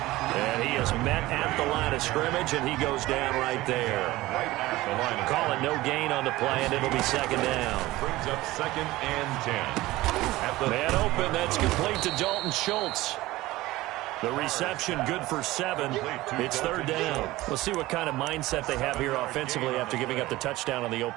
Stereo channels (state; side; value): quieter; left; 18.2 dB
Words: And he is met at the line of scrimmage, and he goes down right there. Right at the line of Call it no gain on the play, and it'll be second down. brings up 2nd and 10. At the Man open, that's complete to Dalton Schultz. The reception good for 7. It's 3rd down. We'll see what kind of mindset they have here offensively after giving up the touchdown on the